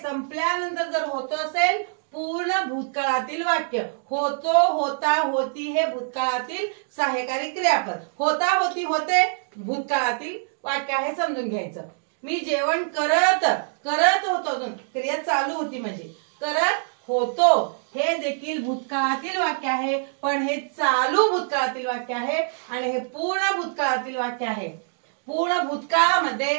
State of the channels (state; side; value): silent; left; digital silence